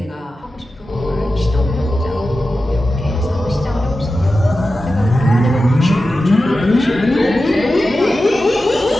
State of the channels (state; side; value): normal; both; correlation 0.93